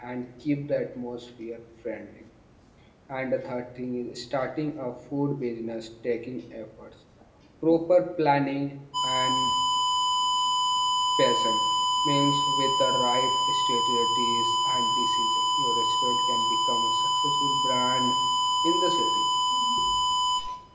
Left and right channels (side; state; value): both; identical; correlation 1.00